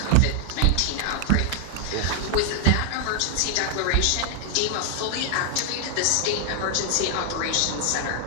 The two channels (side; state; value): both; different; correlation 0.00